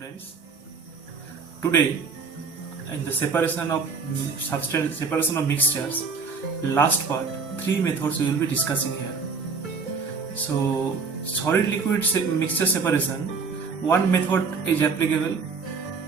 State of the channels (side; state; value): left; quieter; 4.9 dB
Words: friends. Today, in the separation of mixtures, last part, three methods we will be discussing here. So, solid liquid mixture separation, one method is applicable,